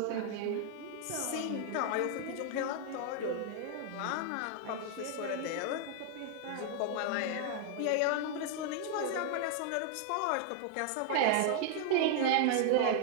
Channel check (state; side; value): different; both; correlation 0.00